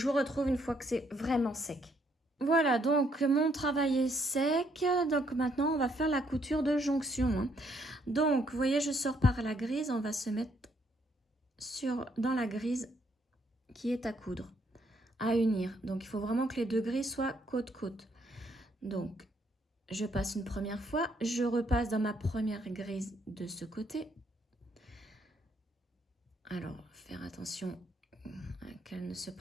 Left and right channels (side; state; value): both; normal; correlation 0.71